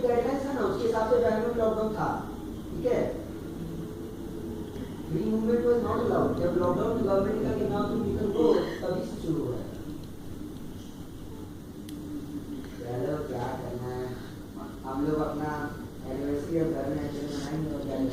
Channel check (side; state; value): both; identical; correlation 1.00